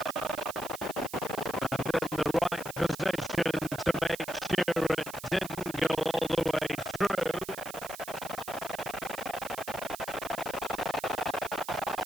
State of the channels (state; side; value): noise; right; hiss, 13 dB below the sound